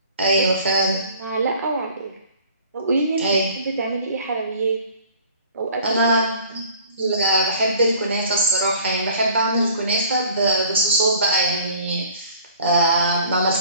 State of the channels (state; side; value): inverted; both; correlation -0.50